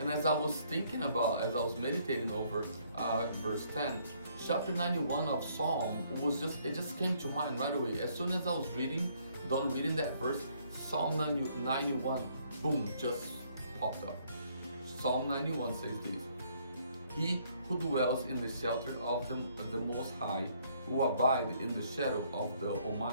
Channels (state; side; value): inverted; both; correlation -0.66